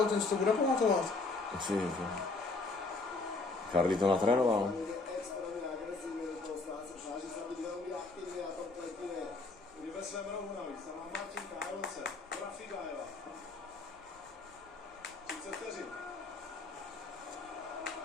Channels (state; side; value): quieter; right; 3.6 dB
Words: ten si to bude pamatovat. Ty vole. Carly to natrénoval.